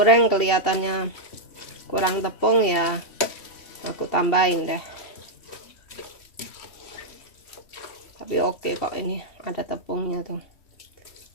kelihatannya kurang tepung ya aku tambahin deh. Tapi oke kok, ini ada tepungnya tuh.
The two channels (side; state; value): right; late; 2.8 ms